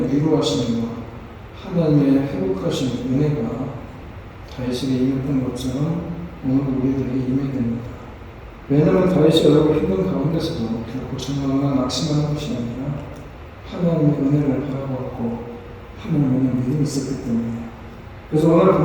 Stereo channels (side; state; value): both; identical; correlation 1.00